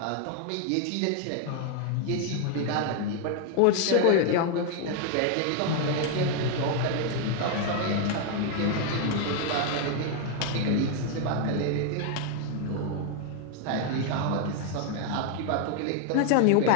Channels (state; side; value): different; both; correlation 0.00